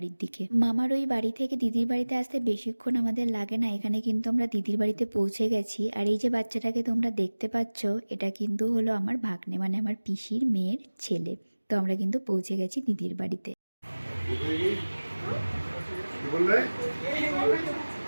দিকে। মামার ওই বাড়ি থেকে দিদির বাড়িতে আসতে বেশিক্ষণ আমাদের লাগে না। এখানে কিন্তু আমরা দিদির বাড়িতে পৌঁছে গেছি। আর এই যে বাচ্চাটাকে তোমরা দেখতে পাচ্ছ, এটা কিন্তু হলো আমার ভাগ্নে, মানে আমার পিসির মেয়ের ছেলে। তো আমরা কিন্তু পৌঁছে গেছি দিদির বাড়িতে।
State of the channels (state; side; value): inverted; both; correlation -1.00